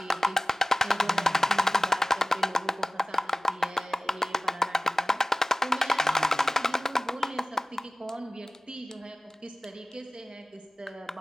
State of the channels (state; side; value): normal; both; correlation 0.97